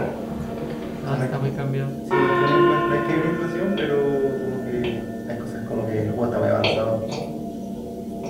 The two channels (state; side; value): identical; both; correlation 1.00